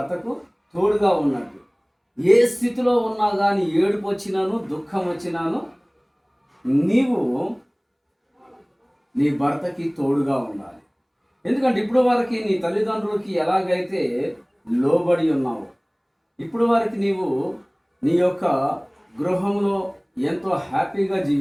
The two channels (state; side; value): identical; both; correlation 1.00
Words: ఏ స్థితిలో ఉన్నా కానీ, ఏడుపు వచ్చినాను, దుఃఖం వచ్చినాను, నీవు నీ భర్తకి తోడుగా ఉండాలి. ఎందుకంటే ఇప్పుడు వరకు నీ తల్లిదండ్రులకి ఎలాగైతే లోబడి ఉన్నావు, ఇప్పుడు వరకు నీవు నీ యొక్క గృహంలో ఎంతో హ్యాపీగా